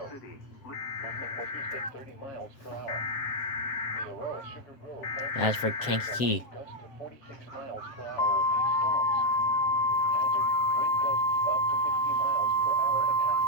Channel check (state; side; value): late; right; 7.8 ms